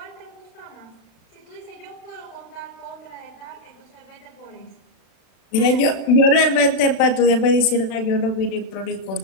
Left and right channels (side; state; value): right; late; 35 ms